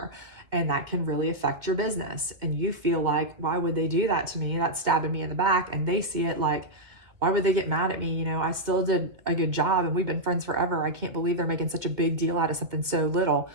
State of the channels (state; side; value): late; left; 2.2 ms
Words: And that can really affect your business. And you feel like, why would they do that to me? That's stabbing me in the back. And they see it like, why would they get mad at me? I still did a good job and we've been friends forever. I can't believe they're making such a big deal out of something so little.